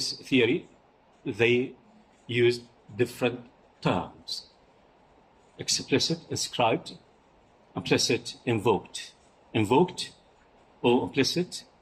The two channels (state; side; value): identical; both; correlation 1.00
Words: theory, they use different terms. Explicit, inscribed, implicit, invoked. Invoked or implicit